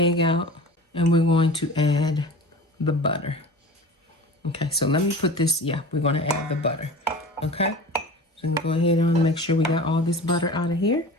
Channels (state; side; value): normal; both; correlation 0.37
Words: out, and we're going to add the butter. Okay, so let me put this. Yeah, we're going to add the butter. Okay, so go ahead and make sure we got all this butter out of here.